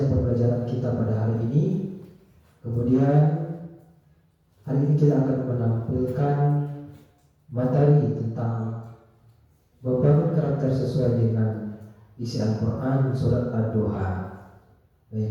pembelajaran kita pada hari ini. Kemudian hari ini kita akan menampilkan materi tentang membangun karakter sesuai dengan isi Al-Quran surat ad-duha.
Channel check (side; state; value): both; identical; correlation 1.00